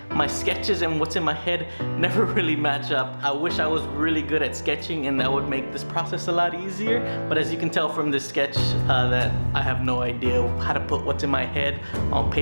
My sketches and what's in my head never really match up. I wish I was really good at sketching and that would make this process a lot easier, but as you can tell from this sketch that I have no idea how to put what's in my head on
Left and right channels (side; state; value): both; inverted; correlation -1.00